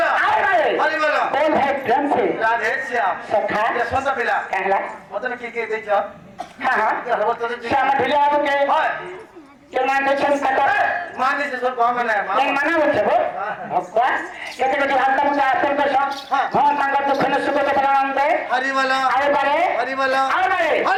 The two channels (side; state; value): both; identical; correlation 1.00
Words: আরে हरिवाला बोल है प्रेम से राधे श्याम सखा ये सोचा पिला कहला मतलब की देखो हाँ हाँ ये हरवत तो श्याम ढिले आबो के होय के मान दे छन कटा माने से सब काम है এই মানা হচ্ছে গো ভক্তা এতে যদি হালকা মুখে আসেন তো সব ভগবান তাঙ্গার দুঃখনে সুখ কেবলানন্দে हरिवाला আরে পারে हरिवाला আরে